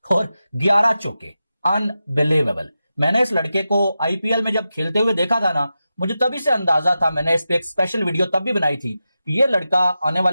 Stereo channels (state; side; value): inverted; both; correlation -0.91